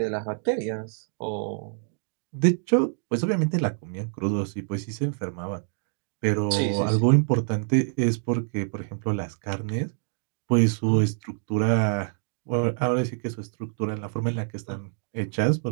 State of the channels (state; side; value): silent; left; 61 dB below the other